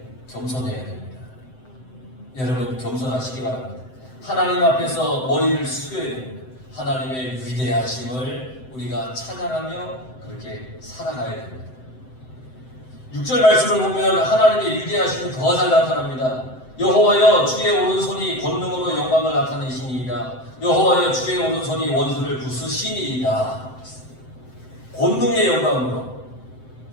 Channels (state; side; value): late; right; 7.8 ms